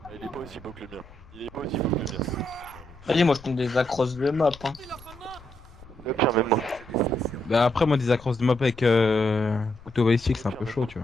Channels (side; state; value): left; noise; rumble, 21 dB below the sound